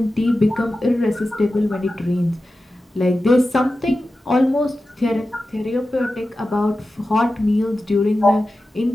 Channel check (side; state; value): both; normal; correlation 0.93